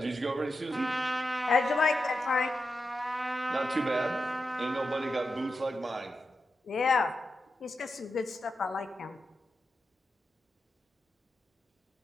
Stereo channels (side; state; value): both; normal; correlation 0.89